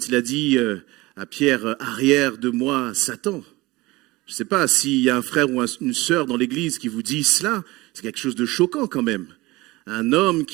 il a dit à Pierre, arrière de moi, Satan. Je ne sais pas s'il y a un frère ou une sœur dans l'église qui vous dit cela, c'est quelque chose de choquant quand même. Un homme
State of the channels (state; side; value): quieter; left; 21.0 dB